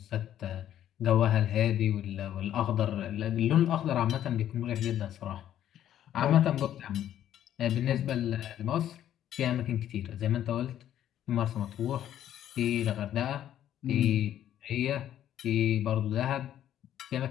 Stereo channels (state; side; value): quieter; right; 11.2 dB